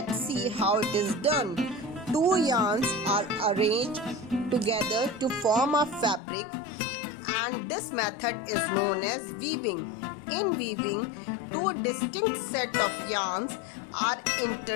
see how it is done. Two yarns are arranged together to form a fabric, and this method is known as weaving. In weaving, two distinct set of yarns are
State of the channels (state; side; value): drops out; right; at 6.2 s